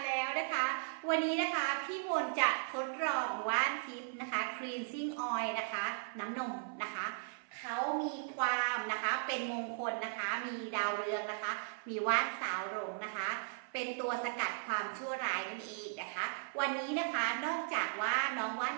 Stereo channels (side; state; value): left; silent; 53 dB below the other